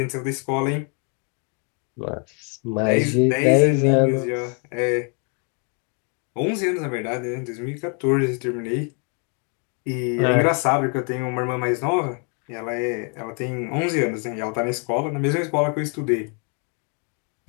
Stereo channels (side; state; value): right; quieter; 37.4 dB